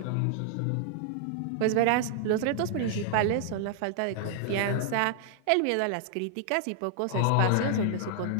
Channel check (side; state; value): both; different; correlation 0.00